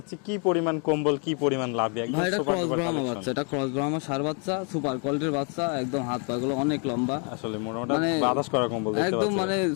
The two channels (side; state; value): right; quieter; 38.0 dB